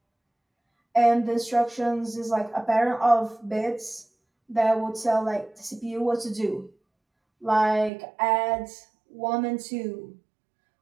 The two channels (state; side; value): drops out; left; at 7.9 s